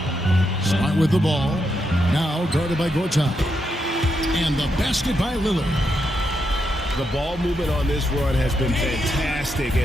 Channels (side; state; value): both; normal; correlation 0.82